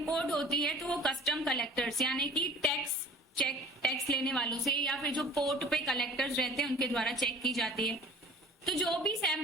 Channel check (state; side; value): normal; both; correlation 0.46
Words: होती है तो वो कस्टम कलेक्टर्स, यानी कि टैक्स लेने वालों से, या फिर जो पोर्ट पे कलेक्टर्स रहते हैं उनके द्वारा चेक की जाती है। तो जो भी